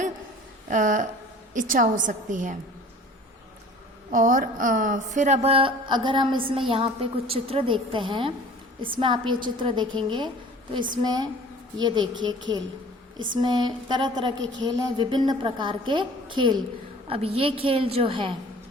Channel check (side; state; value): both; normal; correlation 0.46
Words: इच्छा हो सकती है। और फिर अब अगर हम इसमें यहाँ पे कुछ चित्र देखते हैं, इसमें आप ये चित्र देखेंगे तो इसमें ये देखिए खेल, इसमें तरह तरह के खेल हैं, विभिन्न प्रकार के खेल। अब ये खेल जो है